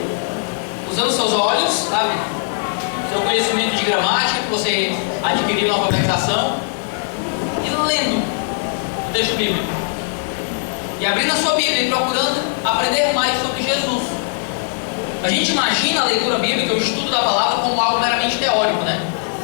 usando seus olhos, sabe? Seu conhecimento de gramática que você adquiriu na alfabetização, e lendo o texto bíblico. E abrindo a sua Bíblia e procurando aprender mais sobre Jesus. A gente imagina a leitura bíblica, o estudo da palavra, como algo meramente teórico, né?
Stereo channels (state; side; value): silent; right; 66 dB below the other